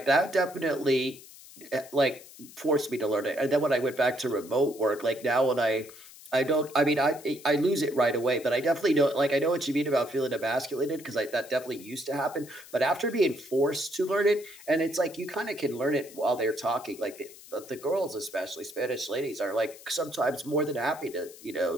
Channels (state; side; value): noise; left; hiss, 19 dB below the sound